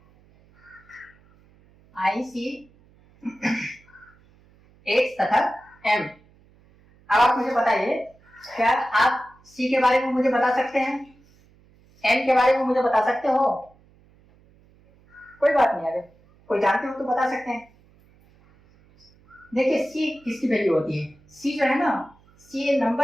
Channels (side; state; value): right; noise; hum, 30 dB below the sound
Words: आई सी एक्स तथा एम। अब आप मुझे बताइए, क्या आप सी के बारे में मुझे बता सकते हैं, एम के बारे में मुझे बता सकते हो? कोई बात नहीं, अगर कोई जानते हो तो बता सकते हैं। देखिए सी किसकी वैल्यू होती है, सी जो है ना, सी